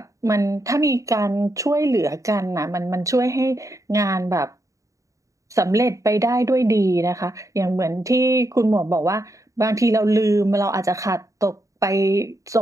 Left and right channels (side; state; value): left; late; 0.16 ms